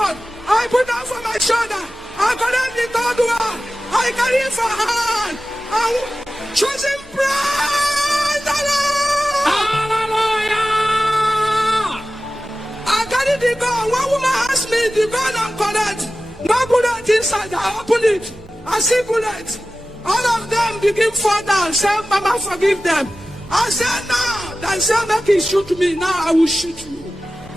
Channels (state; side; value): noise; right; hum, 25 dB below the sound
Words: I put them for my shoulder. I collect the third one. I carry it for hand. I'm choosing praise the Lord. Hallelujah. I carry the gun. One woman asked me the gun and collect. No bullet inside. I open it. I see bullets. All of them begin fall down. Say, Mama, forgive them. I said, no. They say, make it shoot me. Now I will shoot you.